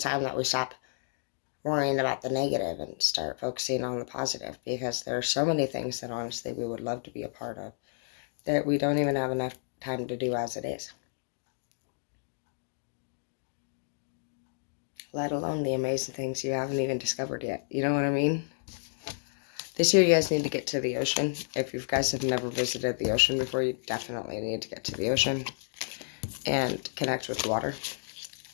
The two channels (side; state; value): right; silent; digital silence